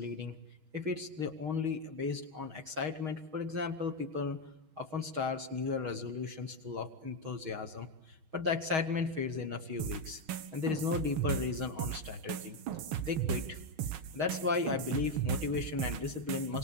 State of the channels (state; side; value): late; left; 6.3 ms